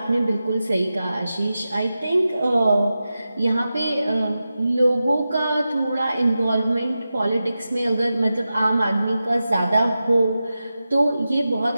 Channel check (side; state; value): both; inverted; correlation -0.92